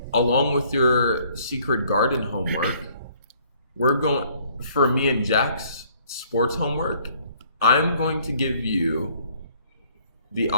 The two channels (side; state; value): both; inverted; correlation -0.61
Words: Along with your secret garden homework, we're going for me and Jack's sports homework. I'm going to give you the